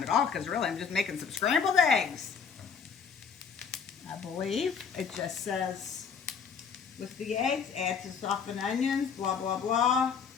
at all because really I'm just making some scrambled eggs. I believe it just says with the eggs, add to softened onions, blah, blah, blah.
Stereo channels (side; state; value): right; quieter; 6.3 dB